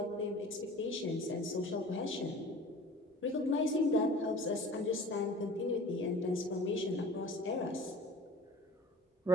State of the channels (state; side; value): normal; both; correlation 0.43